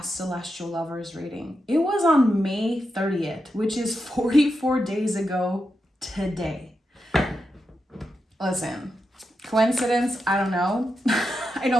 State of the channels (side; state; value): both; normal; correlation 0.87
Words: Celestial Lovers reading? It was on May 30th, which is 44 days ago today. Listen, coincidence? I don't know. I